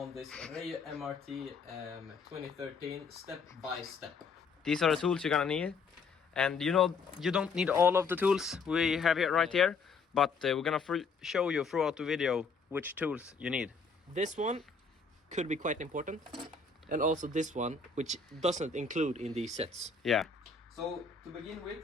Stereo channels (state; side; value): quieter; right; 4.8 dB